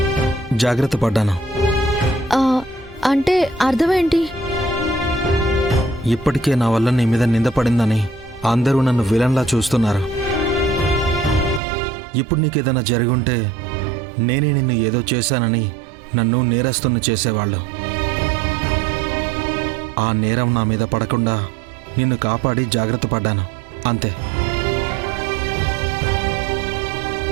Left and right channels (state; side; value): drops out; left; at 11.6 s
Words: జాగ్రత్త పడ్డాను. అంటే అర్థమేంటి? ఇప్పటికే నా వల్ల నీ మీద నిందపడిందని అందరూ నన్ను విలన్లా చూస్తున్నారు. ఇప్పుడు నీకేదైనా జరుగుంటే నేనే నిన్ను ఏదో చేశానని నన్ను నేరస్తుని చేసేవాళ్ళు. ఆ నేరం నా మీద పడకుండా నిన్ను కాపాడి జాగ్రత్త పడ్డాను, అంతే.